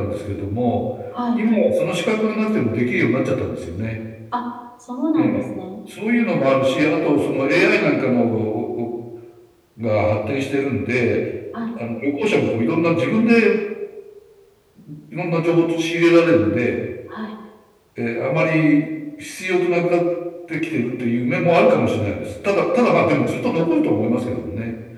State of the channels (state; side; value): identical; both; correlation 1.00